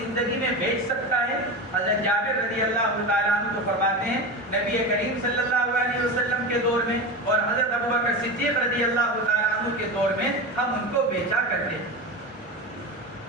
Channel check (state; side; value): normal; both; correlation 0.23